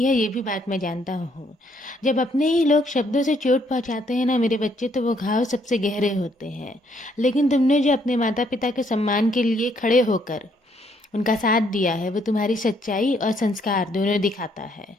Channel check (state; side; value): normal; both; correlation 0.69